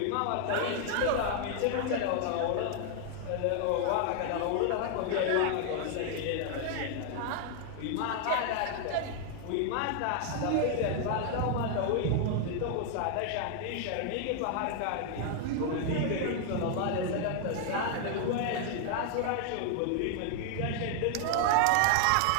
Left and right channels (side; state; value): both; different; correlation 0.00